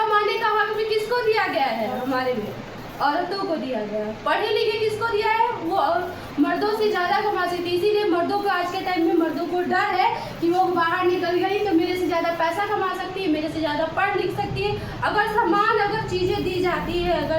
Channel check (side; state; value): both; identical; correlation 1.00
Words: का हक भी किसको दिया गया है? हमारे में औरतों को दिया गया है। पढ़े लिखे किसको दिया है? वो मर्दों से ज्यादा कमा सकती है। इसीलिए मर्दों को आज के टाइम में मर्दों को डर है कि वो बाहर निकल गई तो मेरे से ज्यादा पैसा कमा सकती है, मेरे से ज्यादा पढ़ लिख सकती है। अगर चीजें दी जाती है,